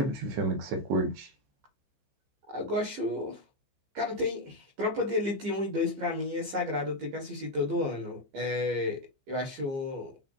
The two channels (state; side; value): late; left; 15 ms